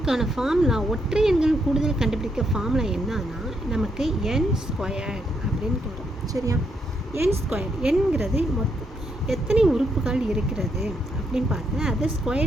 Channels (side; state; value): both; normal; correlation 0.77